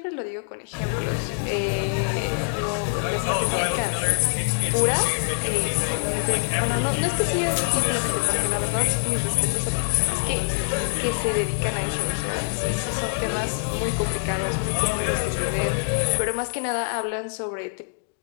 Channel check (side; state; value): right; silent; digital silence